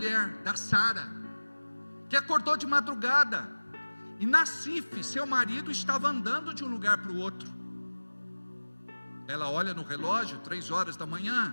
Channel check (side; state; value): both; inverted; correlation -1.00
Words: da Sara, que acordou de madrugada, e Nassif, seu marido, estava andando de um lugar para o outro. Ela olha no relógio, 3 horas da